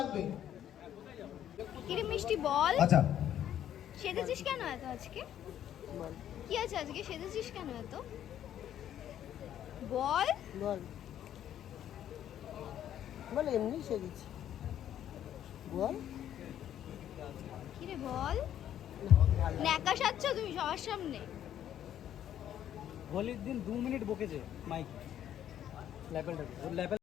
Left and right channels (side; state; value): right; quieter; 10.8 dB